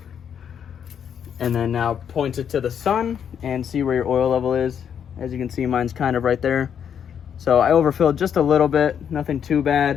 And then now point it to the sun and see where your oil level is. As you can see, mine's kind of right there. So I overfilled just a little bit, nothing too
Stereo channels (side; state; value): right; quieter; 8.2 dB